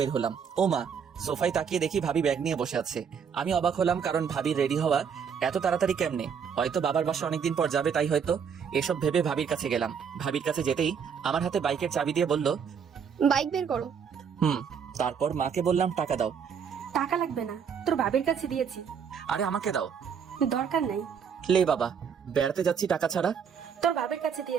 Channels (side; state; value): left; quieter; 7.0 dB